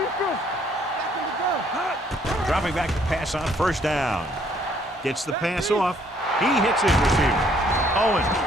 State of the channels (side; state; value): both; normal; correlation 0.65